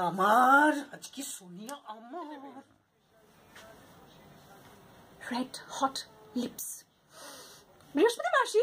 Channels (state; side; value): identical; both; correlation 1.00